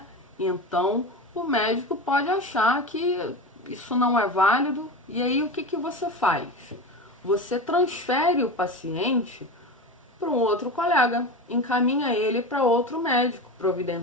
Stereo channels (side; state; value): both; normal; correlation 0.25